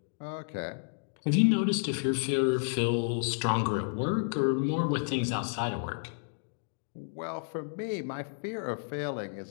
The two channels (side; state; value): right; silent; digital silence